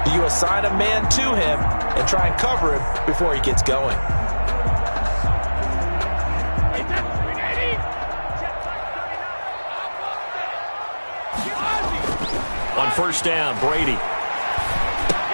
do you assign a man to him and try and cover him before he gets going? On first down, Brady.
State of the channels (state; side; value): inverted; both; correlation -1.00